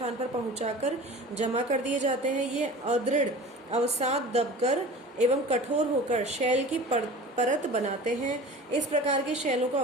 पर पहुंचाकर जमा कर दिए जाते हैं। ये अदृढ़ अवसाद दबकर एवं कठोर होकर शैल की परत बनाते हैं। इस प्रकार की शैलों को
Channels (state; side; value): normal; both; correlation 0.38